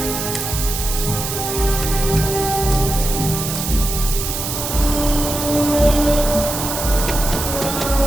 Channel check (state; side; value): noise; right; hiss, 4 dB below the sound